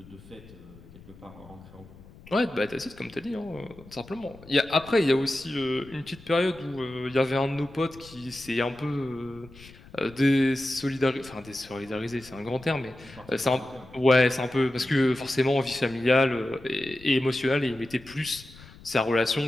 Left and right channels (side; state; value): left; noise; rumble, 21 dB below the sound